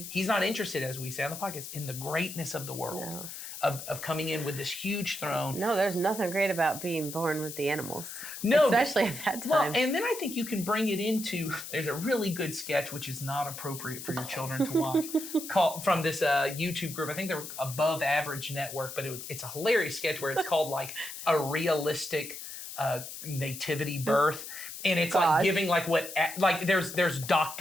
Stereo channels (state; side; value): noise; left; hiss, 10 dB below the sound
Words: not interested, as we say on the podcast, in the greatness of the world, of coming in with this huge throne. No, there's nothing great about being born with the animals. No, especially at that time. Well, and then I think you can bring it into, there's a really good sketch, which is not appropriate for your children to watch, from this YouTube group. I think they're Above Average Network, but it's a hilarious sketch where it's called like a realistic nativity birth. And it's like giving there's